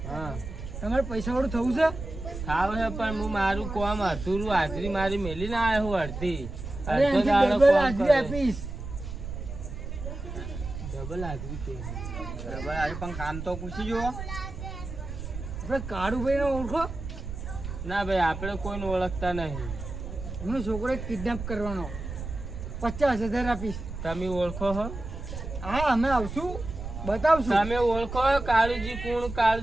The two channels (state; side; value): noise; right; rumble, 8 dB below the sound